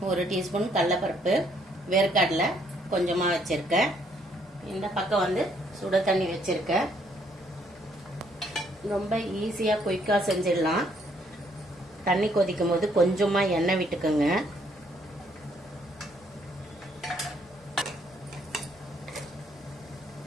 1 டீஸ்பூன் கடலைப்பருப்பு, வேர்க்கடலை கொஞ்சமா வச்சிருக்கேன். இந்த பக்கம் வந்து சுட தண்ணி வச்சிருக்கேன். ரொம்ப ஈஸியா குயிக்கா செஞ்சிடலாம். தண்ணி கொதிக்கும் போது கொஞ்சமா எண்ணெய் விட்டுக்கோங்க.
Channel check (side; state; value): both; normal; correlation 0.68